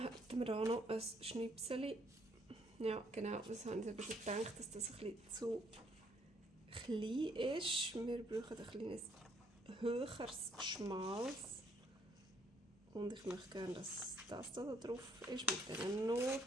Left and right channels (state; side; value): normal; both; correlation 0.68